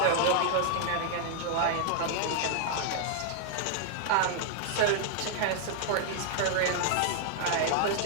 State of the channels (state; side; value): different; both; correlation 0.00